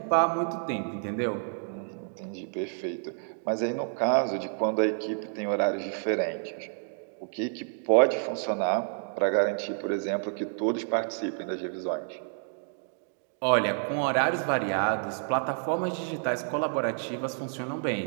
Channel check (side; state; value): left; silent; digital silence